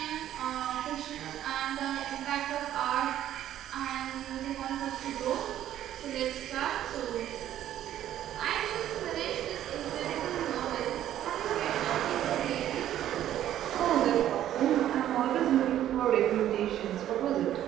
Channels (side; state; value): left; quieter; 11.9 dB